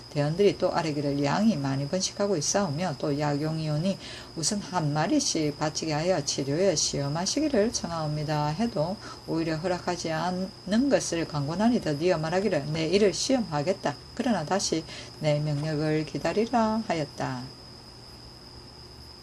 대원들이 또 아뢰기를 양이 많이 번식하고 있사오며 또 약용이 오니 우선 한 마리씩 바치게 하여 치료에 시험하시기를 청하옵니다 해도 오히려 허락하지 않는 것을 강권하니 드디어 말하기를 내 이를 시험하겠다. 그러나 다시 내 명령을 기다리라 하였다.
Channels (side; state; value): both; identical; correlation 1.00